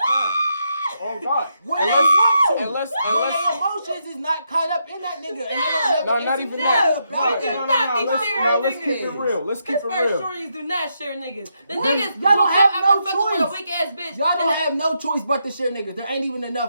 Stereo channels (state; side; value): inverted; both; correlation -0.81